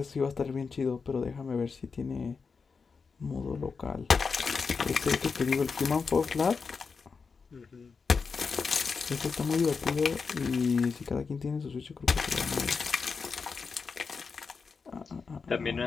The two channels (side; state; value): right; quieter; 5.1 dB